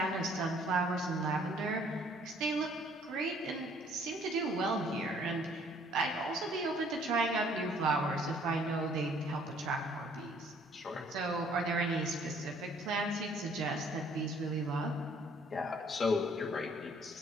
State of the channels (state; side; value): normal; both; correlation 0.60